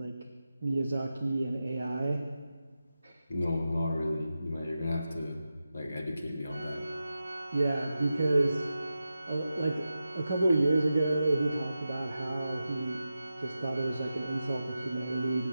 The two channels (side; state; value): both; inverted; correlation -0.91